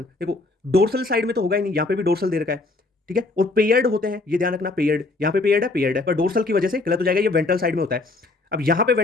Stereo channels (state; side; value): quieter; right; 3.2 dB